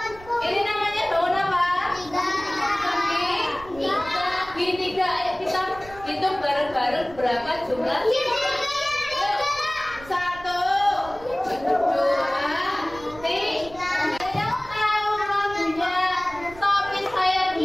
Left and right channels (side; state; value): right; noise; rumble, 19 dB below the sound